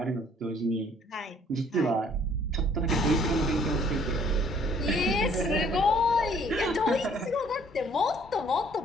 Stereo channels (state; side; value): normal; both; correlation 0.60